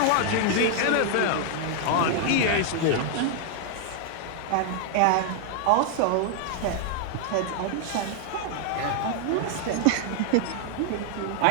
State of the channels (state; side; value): different; both; correlation 0.00